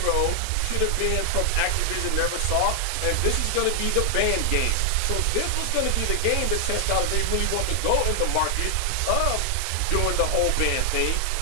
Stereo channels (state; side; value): different; both; correlation 0.00